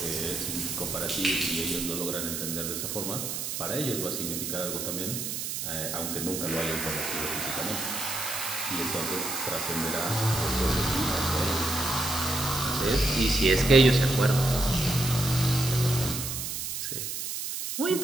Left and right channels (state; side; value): noise; right; hiss, 4 dB below the sound